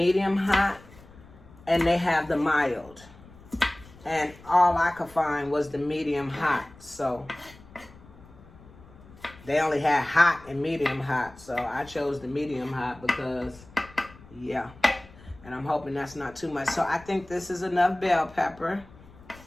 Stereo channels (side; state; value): left; noise; rumble, 22 dB below the sound